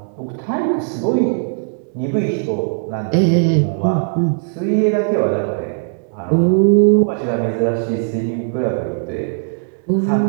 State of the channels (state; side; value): silent; left; digital silence